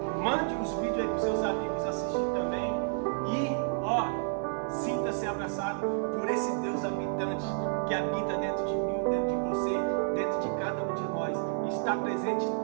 Mande os vídeos aí para os seus amigos assistir também. E, sinta-se abraçado por esse Deus habitante que habita dentro de mim, dentro de você, dentro de cada um de nós. Está presente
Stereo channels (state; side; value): silent; left; 57 dB below the other